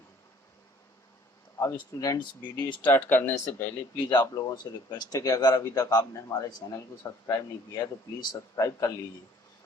अब स्टूडेंट्स वीडियो स्टार्ट करने से पहले प्लीज़ आप लोगों से रिक्वेस्ट है कि अगर अभी तक आपने हमारे चैनल को सब्सक्राइब नहीं किया है तो प्लीज़ सब्सक्राइब कर लीजिए।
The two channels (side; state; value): both; normal; correlation 0.57